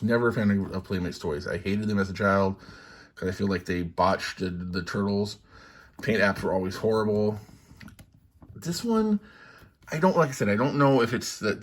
never a fan of Playmates toys. I hated them as a child because I feel like they botched the turtles. Paint apps were always horrible. This one, like I said, I don't know if it's that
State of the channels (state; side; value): identical; both; correlation 1.00